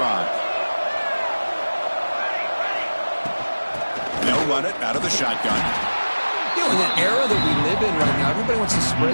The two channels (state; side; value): inverted; both; correlation -1.00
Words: They'll run it out of the shotgun. You know, in that era that we live in right now, everybody wants to spread